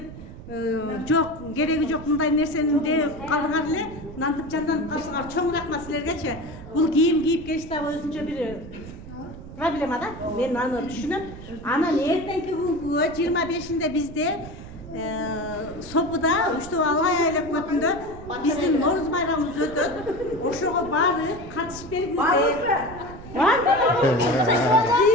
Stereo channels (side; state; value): right; noise; rumble, 14 dB below the sound